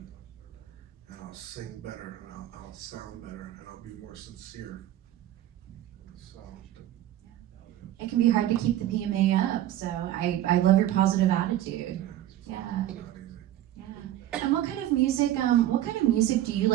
And I'll sing better, and I'll sound better, and I'll be more sincere. So. It can be hard to keep the PMA up, so I love your positive attitude. Yeah. Not easy. Yeah. And what kind of music do you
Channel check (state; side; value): quieter; left; 13.1 dB